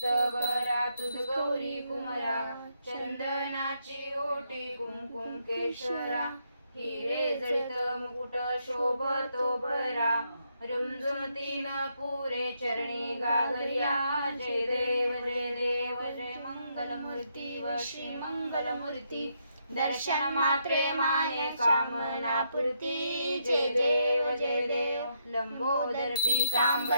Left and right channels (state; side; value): inverted; both; correlation -0.77